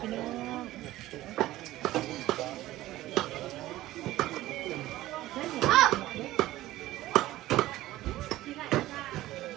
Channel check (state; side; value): quieter; left; 16.0 dB